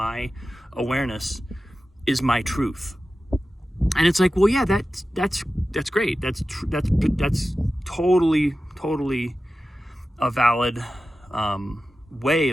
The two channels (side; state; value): both; normal; correlation 0.94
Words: awareness, is my truth. And it's like, well, yeah, that's great. That's totally a valid way